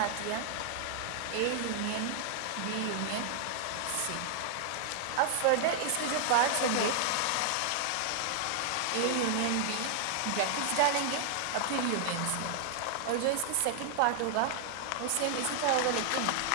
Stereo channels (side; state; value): both; different; correlation 0.00